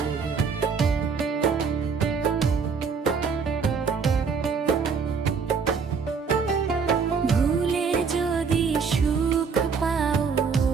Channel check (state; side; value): quieter; left; 5.6 dB